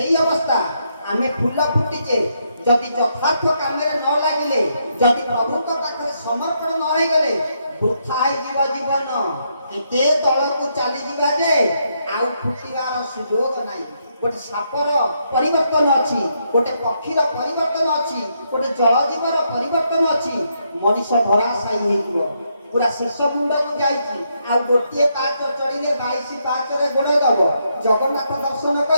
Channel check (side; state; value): both; inverted; correlation -0.77